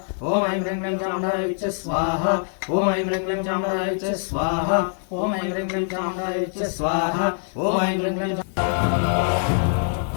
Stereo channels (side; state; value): right; silent; digital silence